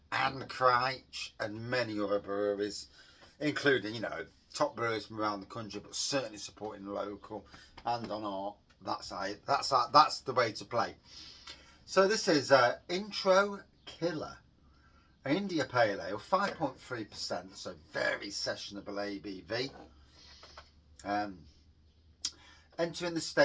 and Crouch and many other breweries, including, top brewers from around the country, but certainly supporting the local and on art. That's the way to play. So this is Intro Killer, India Pale Ale, 5.3%, so very sessionable ABV. Entering the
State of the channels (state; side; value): identical; both; correlation 1.00